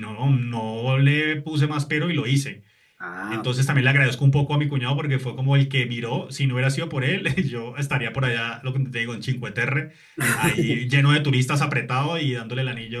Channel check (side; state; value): both; identical; correlation 1.00